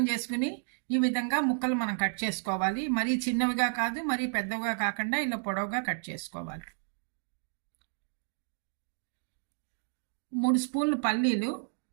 చేసుకుని ఈ విధంగా ముక్కలు మనం కట్ చేసుకోవాలి. మరీ చిన్నవిగా కాదు, మరీ పెద్దవిగా కాకుండా ఇలా పొడవుగా కట్ చేసుకోవాలి. 3 స్పూన్లు పల్లీలు,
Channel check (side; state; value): left; silent; digital silence